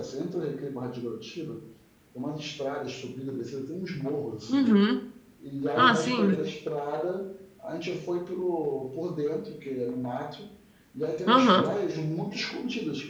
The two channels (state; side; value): identical; both; correlation 1.00